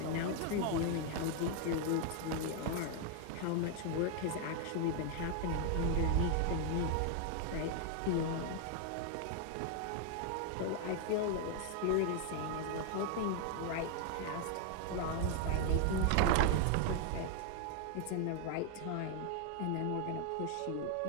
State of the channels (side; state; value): both; different; correlation 0.00